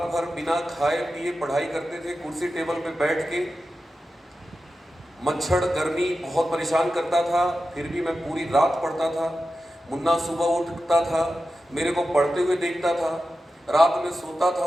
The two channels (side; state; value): both; normal; correlation 0.92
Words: भर बिना खाए पिए पढ़ाई करते थे, कुर्सी टेबल पे बैठ के। मच्छर गर्मी बहुत परेशान करता था, फिर भी मैं पूरी रात पढ़ता था। मुन्ना सुबह उठता था, मेरे को पढ़ते हुए देखता था, रात में सोता था,